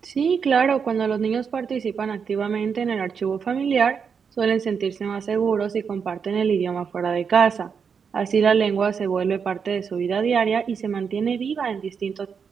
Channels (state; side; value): quieter; left; 6.4 dB